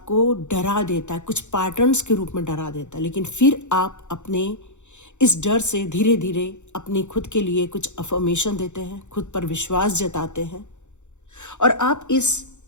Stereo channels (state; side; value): late; right; 0.84 ms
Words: डरा देता है, कुछ पैटर्न्स के रूप में डरा देता है। लेकिन फिर आप अपने इस डर से धीरे धीरे अपनी खुद के लिए कुछ अफर्मेशन देते हैं, खुद पर विश्वास जताते हैं, और आप इस